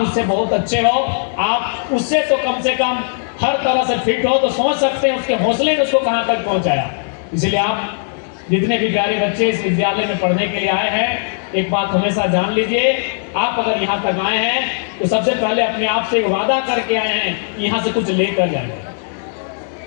उससे बहुत अच्छे हो, आप उससे तो कम से कम हर तरह से फिट हो, तो सोच सकते हैं उसके हौसले ने उसको कहां तक पहुंचाया। इसलिए आप जितने भी प्यारे बच्चे इस विद्यालय में पढ़ने के लिए आए हैं, एक बात हमेशा जान लीजिए, आप अगर यहाँ तक आए हैं तो सबसे पहले अपने आप से वादा करके आए हैं कि यहाँ से कुछ लेकर जाएंगे।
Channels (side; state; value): right; silent; digital silence